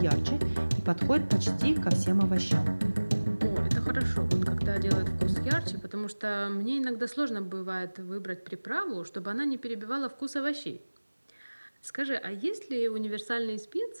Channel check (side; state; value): both; inverted; correlation -1.00